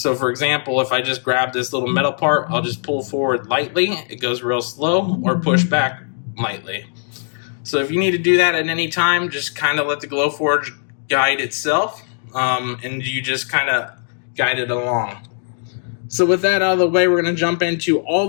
for example, if I just grab this little metal part, I'll just pull forward lightly. It goes real slow, or push back lightly. So if you need to do that at any time, just kind of let the Glowforge guide itself, and you just kind of guide it along. So with that out of the way, we're going to jump into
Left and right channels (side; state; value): right; silent; digital silence